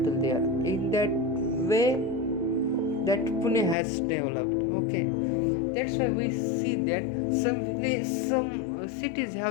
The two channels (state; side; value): drops out; right; at 3.8 s